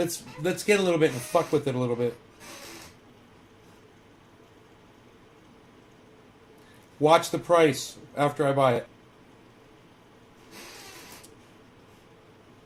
get a little bit and fuck with it a little bit. Watch the price after I buy it.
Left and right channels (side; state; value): both; identical; correlation 1.00